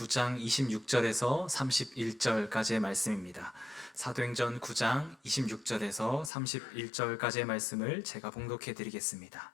26절에서 31절까지의 말씀입니다. 사도행전 9장 26절에서 31절까지의 말씀을 제가 봉독해 드리겠습니다.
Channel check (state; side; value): drops out; right; at 6.3 s